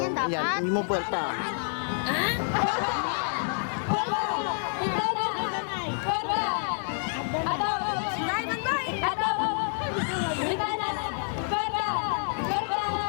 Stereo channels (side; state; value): right; silent; 59 dB below the other